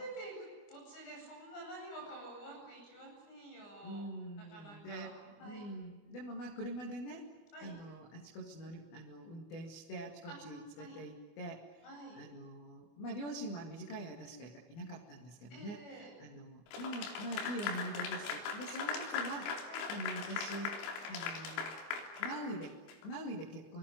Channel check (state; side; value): late; right; 25 ms